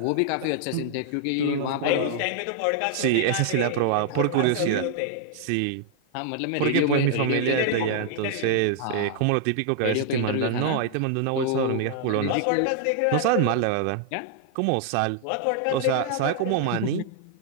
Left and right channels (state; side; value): different; both; correlation 0.00